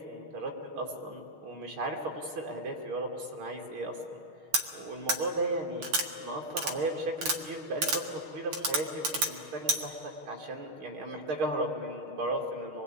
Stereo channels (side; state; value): left; late; 6.4 ms